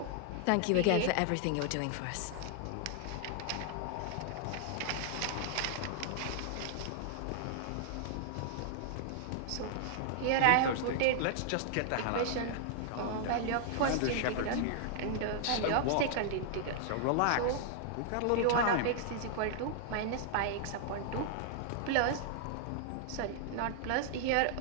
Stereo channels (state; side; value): different; both; correlation -0.01